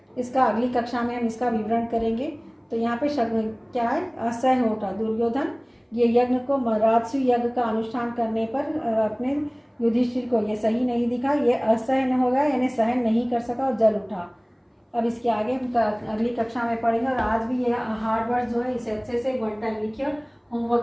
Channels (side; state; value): both; identical; correlation 1.00